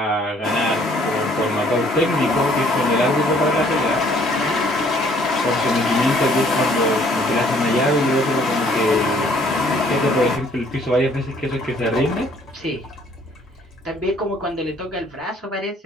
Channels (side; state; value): both; normal; correlation 0.61